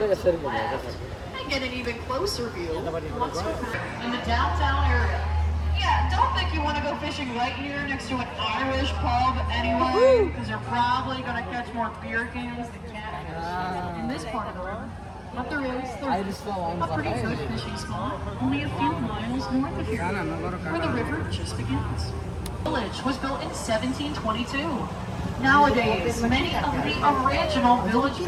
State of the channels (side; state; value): both; identical; correlation 1.00